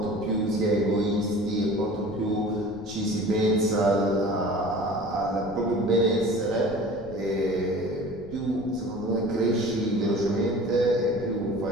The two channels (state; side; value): noise; left; rumble, 18 dB below the sound